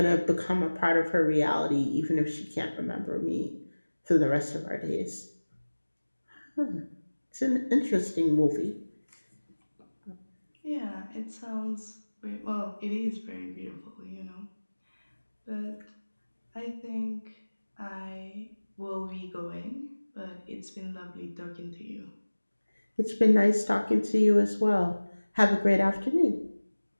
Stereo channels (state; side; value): inverted; both; correlation -1.00